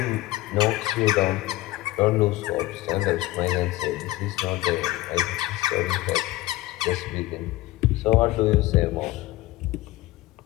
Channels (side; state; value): right; quieter; 17.3 dB